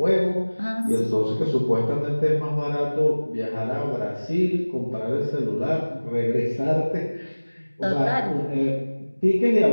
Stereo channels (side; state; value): both; inverted; correlation -1.00